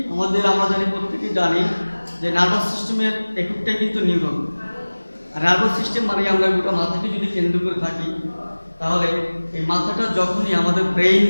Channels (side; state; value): both; inverted; correlation -1.00